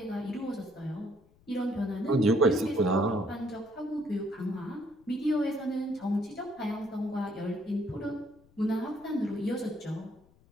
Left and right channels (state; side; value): noise; left; rumble, 30 dB below the sound